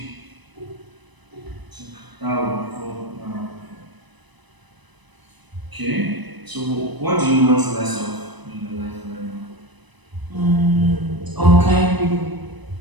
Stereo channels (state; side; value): late; left; 1.0 ms